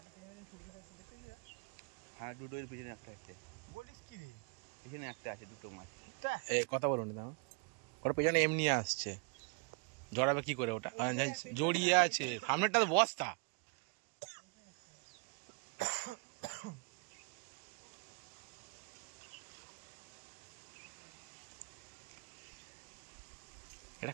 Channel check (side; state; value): left; quieter; 35.0 dB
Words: হ্যাঁ, দুটোর পিছনে একটা আছে। বলিস কি রে? পিছনে একটা আছে, দুটো মাছ। কথা বলুন না, ওর পেছনে এমনি আসছে, জড়াবে কি করে ওটা? জড়িয়ে আছে, সামনেরটা তো বস্তা। এটা